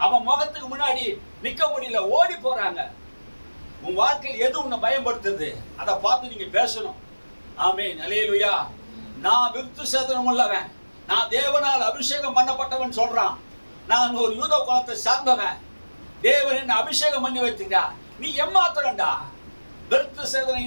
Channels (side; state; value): both; inverted; correlation -1.00